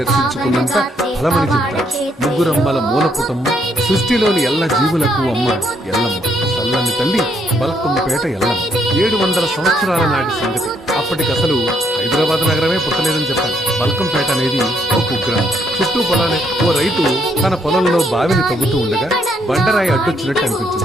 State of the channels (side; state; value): both; normal; correlation 0.72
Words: దర్శించుకున్నంత ఫలమని చెప్తారు. ముగ్గురమ్మల మూలపుటమ్మ, సృష్టిలోని ఎల్ల జీవులకు అమ్మ ఎల్లమ్మ, చల్లని తల్లి బల్కంపేట ఎల్లమ్మ. 700 సంవత్సరాల నాటి సంగతి. అప్పటికసలు హైదరాబాద్ నగరమే పుట్టలేదని చెప్పాలి. బల్కంపేట అనేది ఓ కుగ్రామం. చుట్టూ పొలాలే. ఓ రైతు తన పొలంలో బావిని తవ్వుతూ ఉండగా బండరాయి అడ్డొచ్చినట్టు